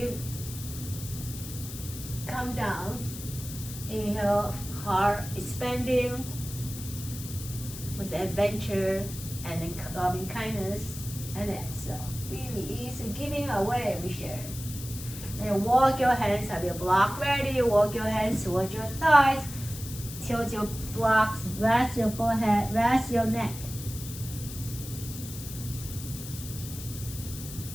come down. Inhale, heart expanding with adventure and then loving kindness. And exhale, we release and giving away, we share. Then walk your hands, have your block ready. Walk your hands towards your thighs. Tilt your blocks, rest your forehead, rest your neck.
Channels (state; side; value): noise; left; hiss, 11 dB below the sound